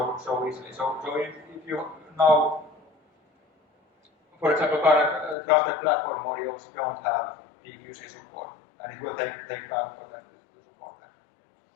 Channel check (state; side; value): drops out; right; at 5.4 s